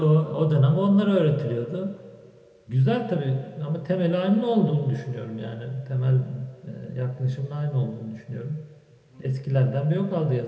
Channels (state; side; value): identical; both; correlation 1.00